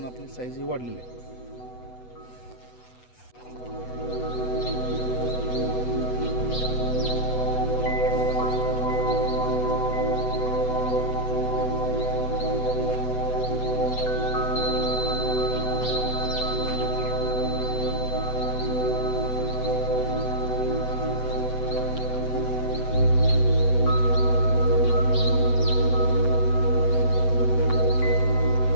आपली साईज ही वाढलेली आहे.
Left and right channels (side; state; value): right; late; 8.1 ms